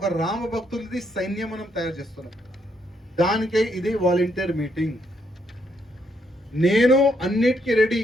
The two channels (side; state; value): both; normal; correlation 0.75